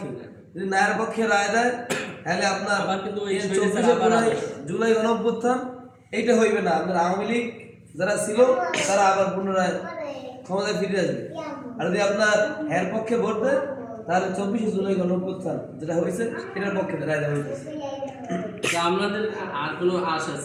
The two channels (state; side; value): identical; both; correlation 1.00